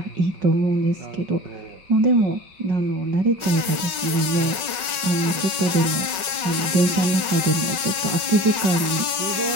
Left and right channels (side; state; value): left; late; 5.4 ms